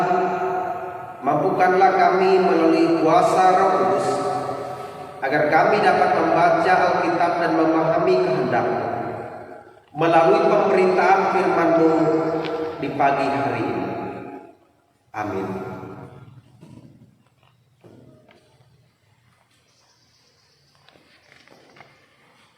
mampukanlah kami melalui kuasa Roh Kudus agar kami dapat membaca Alkitab dan memahami kehendak-Mu melalui pemberitaan firman-Mu di pagi hari ini. Amin.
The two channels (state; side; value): identical; both; correlation 1.00